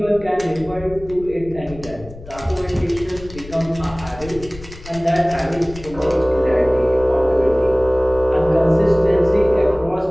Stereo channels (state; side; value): noise; left; rumble, 17 dB below the sound